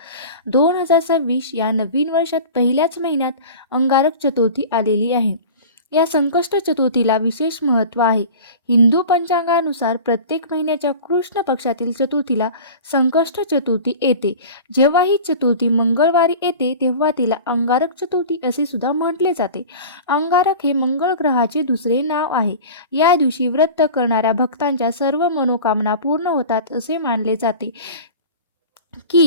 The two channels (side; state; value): both; inverted; correlation -0.36